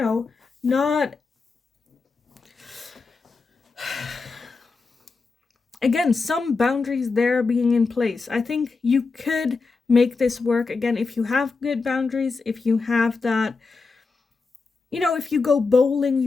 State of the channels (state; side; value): quieter; right; 4.3 dB